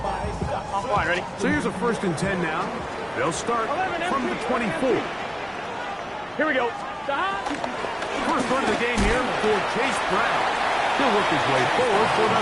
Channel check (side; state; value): both; identical; correlation 1.00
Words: I'm fine, ready? So here's a 1st and 10 now. They'll start from the 24. Here we go. First run of the game here for Chase Brown. He'll work his way forward for